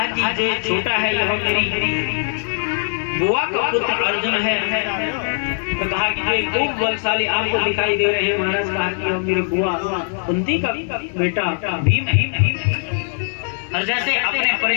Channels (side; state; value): right; silent; 58 dB below the other